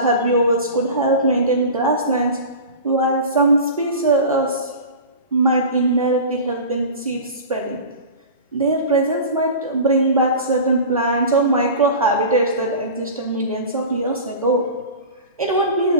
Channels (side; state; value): both; inverted; correlation -0.34